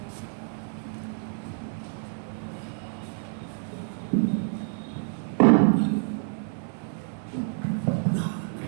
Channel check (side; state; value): left; silent; 58 dB below the other